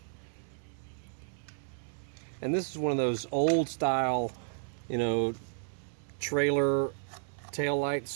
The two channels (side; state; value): left; silent; 56 dB below the other